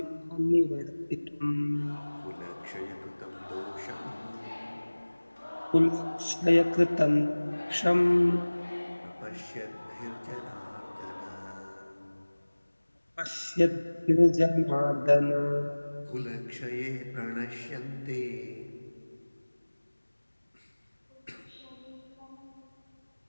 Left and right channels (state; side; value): inverted; both; correlation -1.00